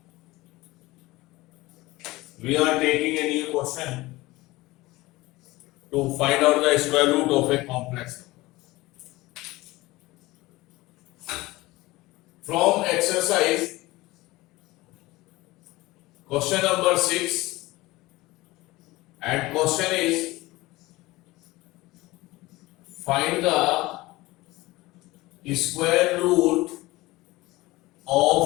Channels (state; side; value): quieter; right; 19.9 dB